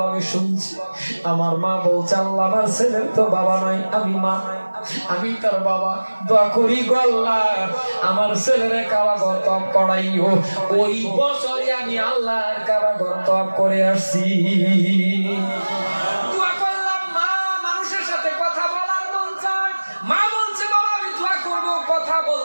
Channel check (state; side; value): inverted; both; correlation -1.00